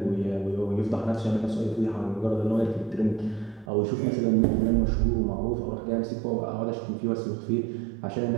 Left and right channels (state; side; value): drops out; left; at 3.7 s